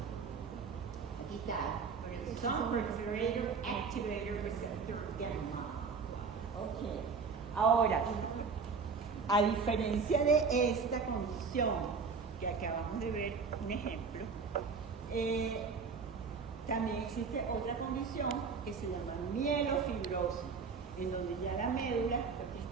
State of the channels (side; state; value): left; quieter; 5.2 dB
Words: Aquí está. Proliferator Activator Receptor Gamma. Ok. Ahora, a diferencia de esta condición que acabamos de ver, un ejemplo, También existe otra condición que se llama mielofibrosis, en donde ya la médula lo que